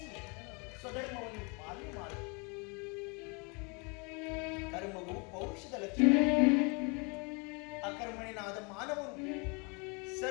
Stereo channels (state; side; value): quieter; right; 31.8 dB